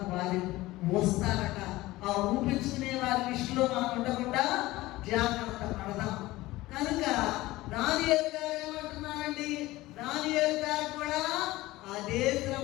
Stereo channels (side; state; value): right; quieter; 18.4 dB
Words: వారి మోస్తారట. ఆ ఊపించుకునే వారి లిస్టులో మనం ఉండకుండా జాగ్రత్త పడదాం. కనుక దానియేలు గారు ఏమంటున్నారండి? దానియేలు గారు కూడా అదే